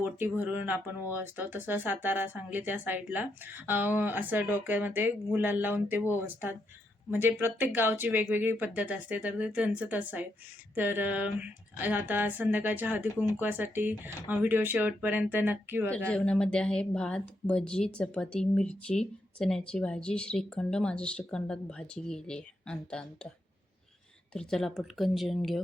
भरून आपण ओवाळतो, तसं सातारा सांगली त्या साईडला असं डोक्यामध्ये गुलाल लावून ते ओवाळतात. म्हणजे प्रत्येक गावची वेगवेगळी पद्धत असते, तर ते त्यांचं तसं आहे. तर आता संध्याकाळच्या हळदी कुंकवासाठी व्हिडिओ शेवटपर्यंत नक्की बघा. जेवणामध्ये आहे भात, भजी, चपाती, मिरची, चण्याची भाजी, श्रीखंड. माझ्या श्रीखंडात भाजी गेली आहे आणता. तर चला पटकन जेवून घेऊ.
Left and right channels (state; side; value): normal; both; correlation 0.80